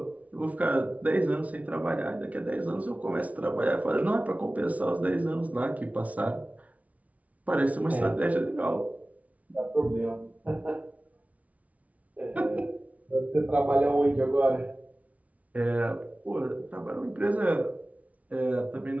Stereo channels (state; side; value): late; left; 0.068 ms